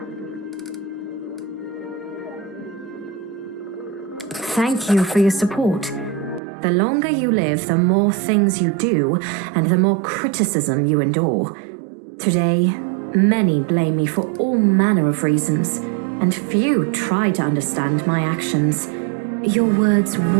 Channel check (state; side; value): drops out; left; at 6.4 s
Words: Thank you for your support. The longer you live, the more things you do, and the more criticism you endure. Today, many blame me for all manner of reasons, and few try to understand my actions. Your words